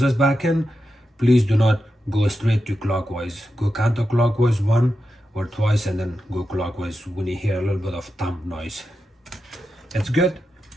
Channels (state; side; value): normal; both; correlation 0.89